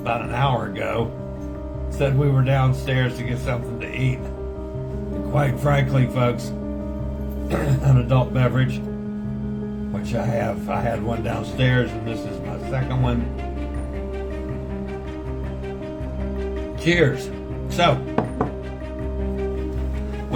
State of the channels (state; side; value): identical; both; correlation 1.00